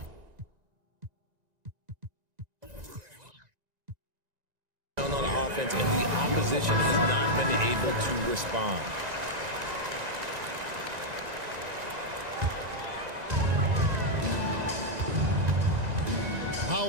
tone on offense, and the opposition has not been able to respond.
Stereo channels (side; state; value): left; late; 1.9 ms